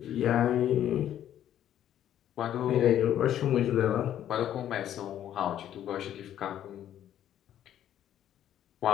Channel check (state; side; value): quieter; right; 11.0 dB